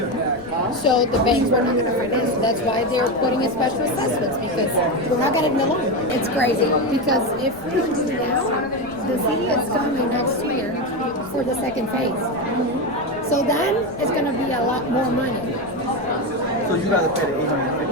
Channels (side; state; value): left; noise; rumble, 22 dB below the sound